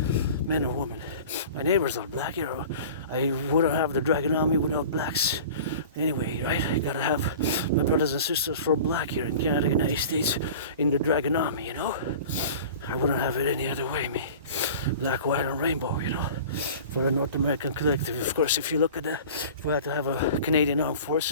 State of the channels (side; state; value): both; inverted; correlation -0.40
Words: man or woman. My neighbors are black here. I wouldn't have the Dragon Army without blacks. Anyway, right? I gotta have my brothers and sisters from black here in Canada, United States, in the Dragon Army, you know? I wouldn't have it any other way, me. Black, white, and rainbow, you know? For a North American collective. Of course, if you look at if we had to have a Canadian Armed